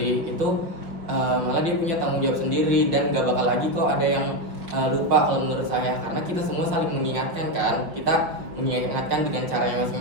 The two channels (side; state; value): left; late; 5.5 ms